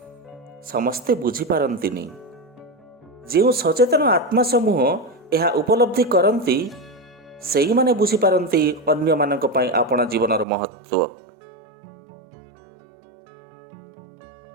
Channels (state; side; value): drops out; left; at 10.5 s